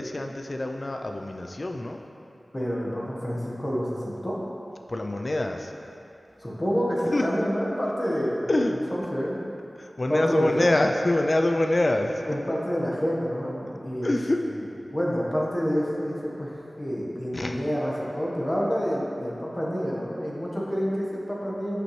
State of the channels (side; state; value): both; normal; correlation 0.98